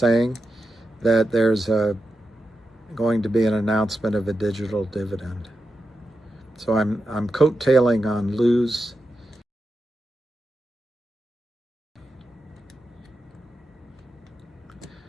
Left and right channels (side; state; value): both; normal; correlation 0.89